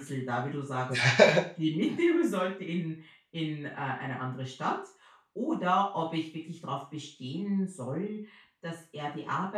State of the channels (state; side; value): identical; both; correlation 1.00